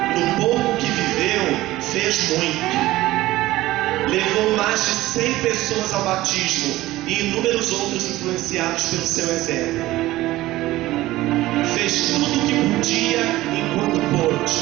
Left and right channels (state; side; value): quieter; left; 17.0 dB